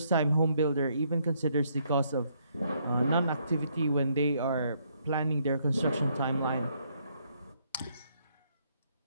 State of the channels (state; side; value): inverted; both; correlation -0.72